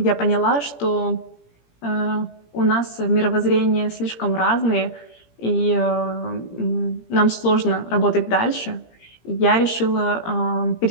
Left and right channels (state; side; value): late; right; 17 ms